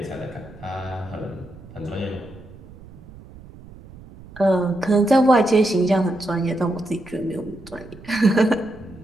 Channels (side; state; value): right; noise; rumble, 19 dB below the sound